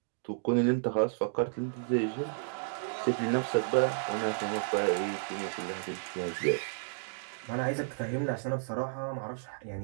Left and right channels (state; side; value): silent; left; digital silence